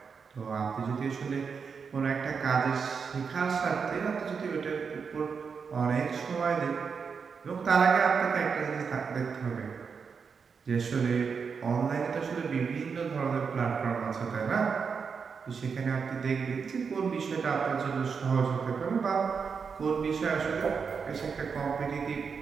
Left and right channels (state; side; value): quieter; left; 5.8 dB